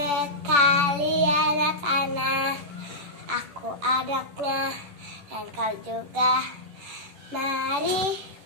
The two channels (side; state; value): left; late; 10 ms